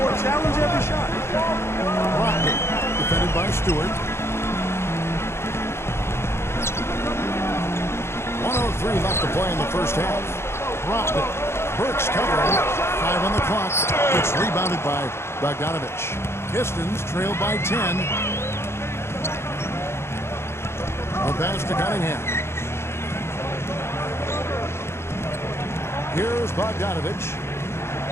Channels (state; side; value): late; right; 0.12 ms